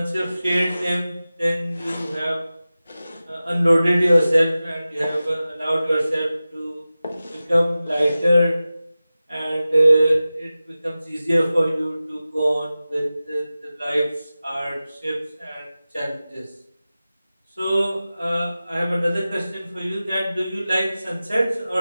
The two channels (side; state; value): both; inverted; correlation -0.96